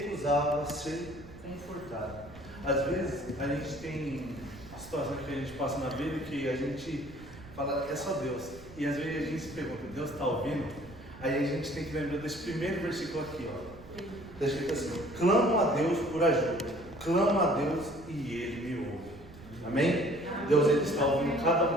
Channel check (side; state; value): right; noise; rumble, 18 dB below the sound